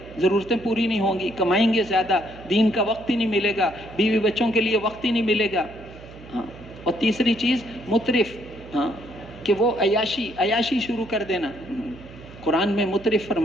ضرورتیں پوری نہیں ہوں گی، کمائیں گے زیادہ، دین کا وقت ہی نہیں ملے گا، بیوی بچوں کے لیے وقت ہی نہیں ملے گا۔ ہاں، اور تیسری چیز مترف، ہاں، کہ وہ عیاشی شروع کر دینا۔ قرآن میں مترف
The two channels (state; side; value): noise; right; hum, 18 dB below the sound